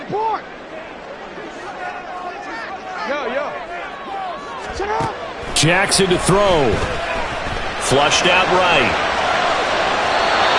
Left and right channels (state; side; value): identical; both; correlation 1.00